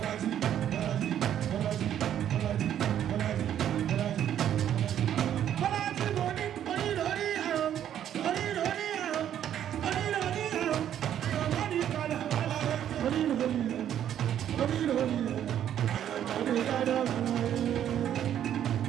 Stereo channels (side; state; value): left; quieter; 10.4 dB